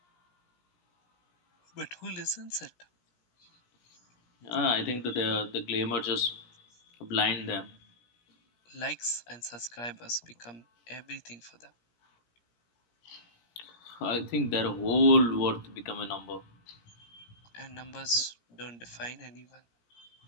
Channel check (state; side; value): late; right; 17 ms